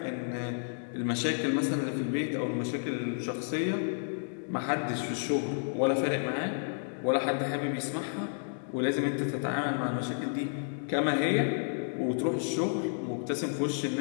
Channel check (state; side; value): silent; right; digital silence